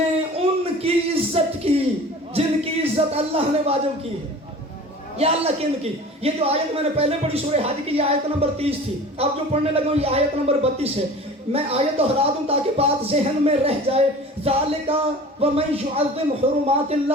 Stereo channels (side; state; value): both; normal; correlation 0.41